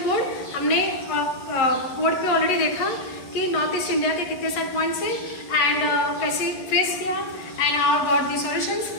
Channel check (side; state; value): right; late; 11 ms